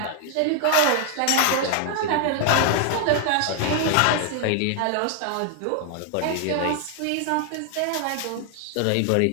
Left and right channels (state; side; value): different; both; correlation 0.00